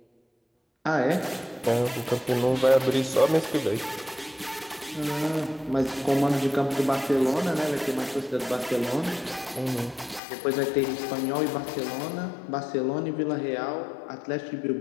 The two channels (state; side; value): drops out; right; at 10.2 s